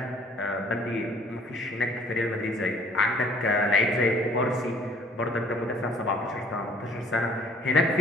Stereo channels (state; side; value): normal; both; correlation 0.57